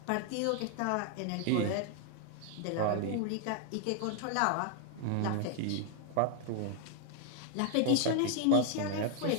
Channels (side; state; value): both; different; correlation 0.00